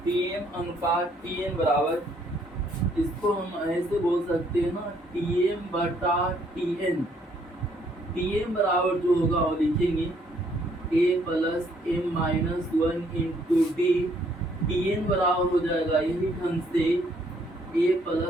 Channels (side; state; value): both; normal; correlation 0.67